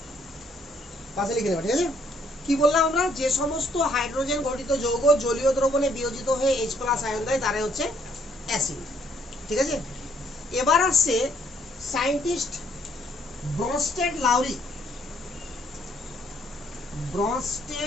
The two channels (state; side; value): normal; both; correlation 0.68